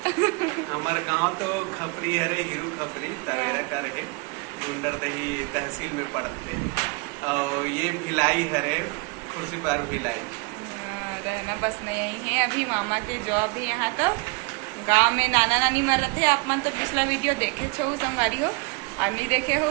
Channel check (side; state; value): left; quieter; 29.5 dB